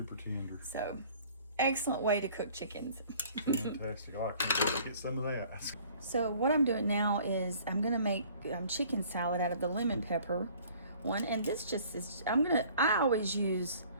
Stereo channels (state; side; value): inverted; both; correlation -0.53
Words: tender. So, excellent way to cook chickens. Fantastic. Oh, I can't wait to get some of that. So what I'm doing now is I'm gonna make chicken salad out of the lemon pepper one, and this just is. I always